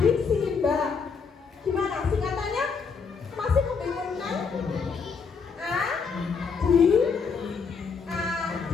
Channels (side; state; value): right; quieter; 5.4 dB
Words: adiksi, Mbak. Gimana singkatannya? Masih membingungkan?